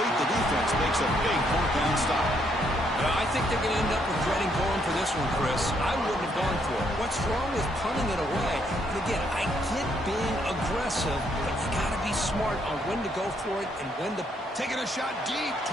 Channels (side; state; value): both; normal; correlation 0.72